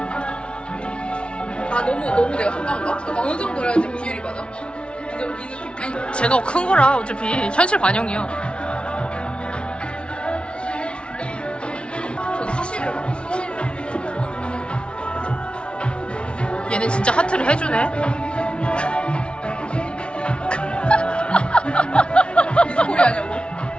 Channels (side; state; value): right; late; 0.058 ms